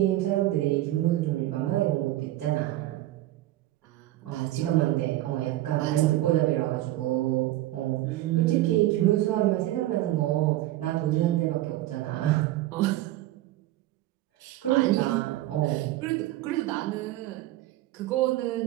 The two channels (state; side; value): quieter; left; 15.5 dB